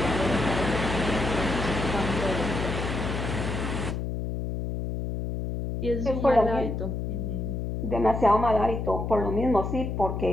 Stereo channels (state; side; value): noise; left; hum, 3 dB below the sound